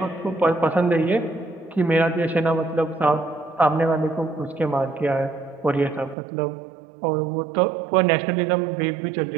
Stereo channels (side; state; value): left; drops out; at 6.2 s